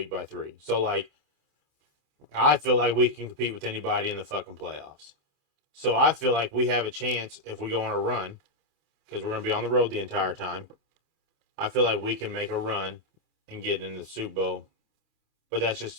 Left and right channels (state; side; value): late; left; 27 ms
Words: by 3. So, like, I feel like we can compete with anybody in the fucking playoffs. So I feel like we have a chance if we go on a run, because we're going to be on the road the entire time. I feel like we can make a run and get in the Super Bowl. But that's